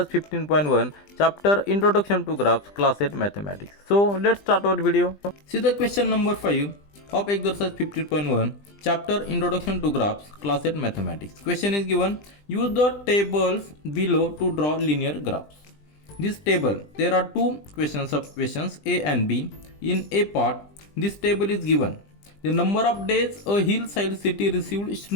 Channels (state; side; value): late; right; 20 ms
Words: 15.1 chapter Introduction to Graphs class 8 Mathematics. So let's start our video. See the question number 5 of exercise 15.1 chapter Introduction to Graphs class 8 Mathematics. Question is given, use the tables below to draw linear graphs. This table, there are two sub-questions A and B. In A part, this table is given. The number of days a hillside city received